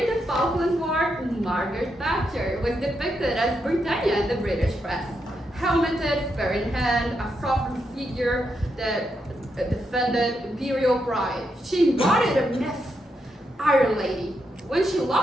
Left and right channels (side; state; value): both; normal; correlation 0.82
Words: the Falklands War, Margaret Thatcher was depicted as Britannia in the British press. Helmeted, spear in hand, a sovereign figure that defended imperial pride. She embodied a myth, Iron Lady. When she